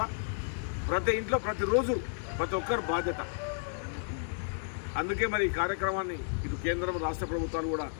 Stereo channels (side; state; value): right; silent; digital silence